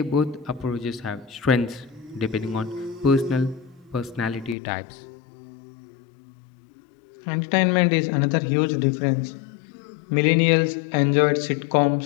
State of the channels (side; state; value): right; drops out; at 4.5 s